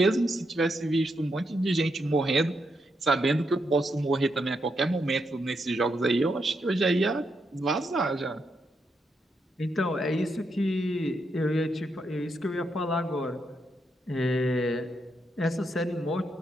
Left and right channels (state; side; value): normal; both; correlation 0.81